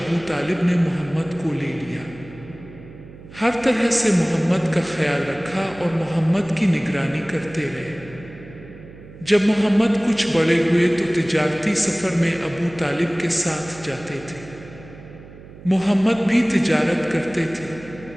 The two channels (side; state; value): right; noise; hum, 18 dB below the sound